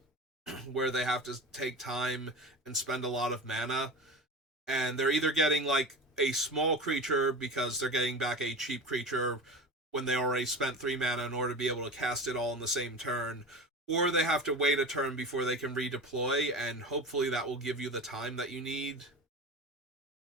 where they have to take time and spend a lot of mana. And they're either getting like a small creature because they're getting back a cheap creature when they already spent 3 mana in order to be able to cast it all in the same turn, or they have to wait a turn before they can redeploy, and hopefully that will give you the time that you need.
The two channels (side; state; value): both; normal; correlation 0.30